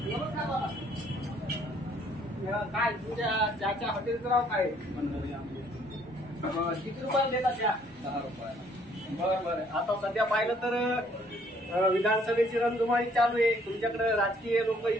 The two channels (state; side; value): normal; both; correlation 0.63